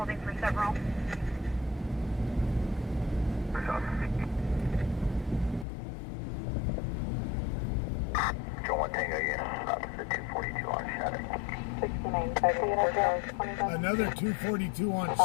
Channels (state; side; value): drops out; right; at 5.7 s